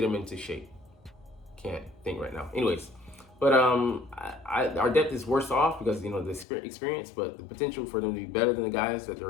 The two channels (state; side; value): drops out; right; at 6.5 s